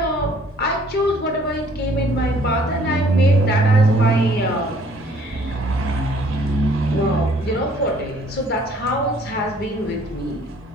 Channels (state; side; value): normal; both; correlation 0.59